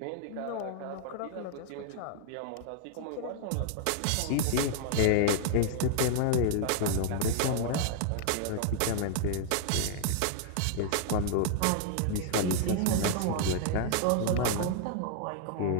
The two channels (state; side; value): different; both; correlation -0.01